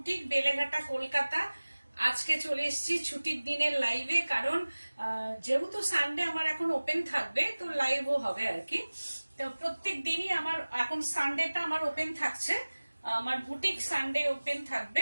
বেলেঘাটা, কলকাতা। আজকে চলে এসেছি ছুটির দিনের লাইভে, কারণ যেহেতু সানডে আমার এখন ওপেন থাকবে, তো লাইভও হবে আর কি। তো প্রত্যেক দিনই আমার এখন সানডেটা আমার ওপেন থাকছে, আমার বুটিক সানডে ওপেন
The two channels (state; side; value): inverted; both; correlation -1.00